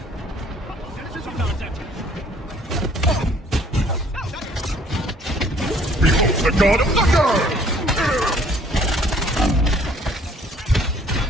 Behold the god of thunder!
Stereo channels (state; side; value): normal; both; correlation 0.58